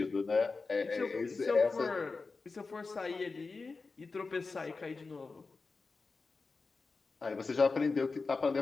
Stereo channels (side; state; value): right; quieter; 4.1 dB